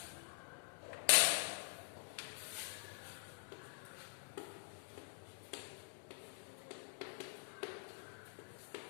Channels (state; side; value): silent; right; digital silence